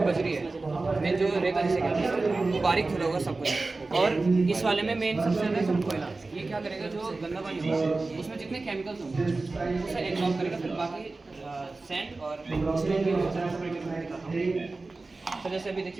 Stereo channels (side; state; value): left; quieter; 3.5 dB